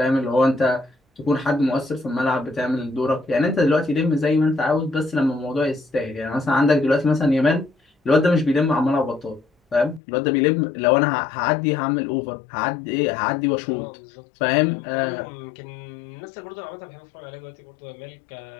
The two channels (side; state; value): right; drops out; at 10.0 s